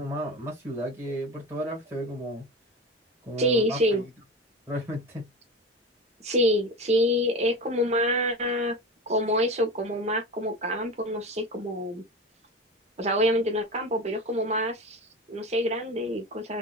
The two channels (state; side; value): normal; both; correlation 0.28